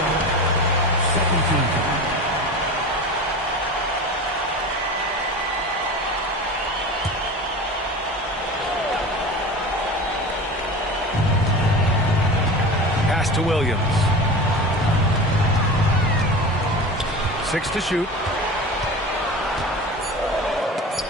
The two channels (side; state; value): both; normal; correlation 0.32